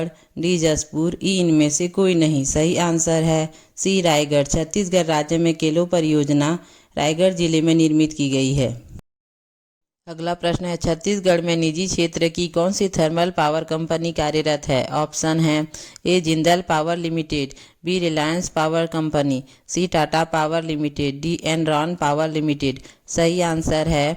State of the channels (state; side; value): identical; both; correlation 1.00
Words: डी जसपुर, ई इनमें से कोई नहीं। सही आंसर है सी रायगढ़। छत्तीसगढ़ राज्य में केलो परियोजना रायगढ़ जिले में निर्मित की गई है। अगला प्रश्न है, छत्तीसगढ़ में निजी क्षेत्र की कौन सी थर्मल पावर कंपनी कार्यरत है? ऑप्शन है A Jindal power limited, B Reliance power company, C Tata power limited, D Enron power limited. सही आंसर